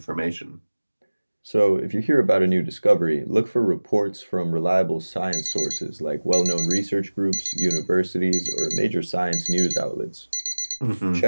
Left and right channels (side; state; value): both; inverted; correlation -1.00